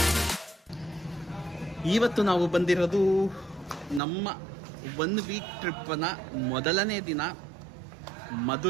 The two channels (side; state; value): left; drops out; at 4.0 s